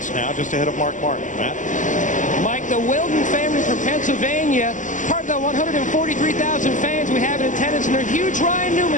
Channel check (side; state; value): right; late; 0.37 ms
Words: now, just ahead of Mark Martin. Matt? Mike, the Wilden family from Pennsylvania, part of the 143,000 fans we have in attendance, and they're huge Ryan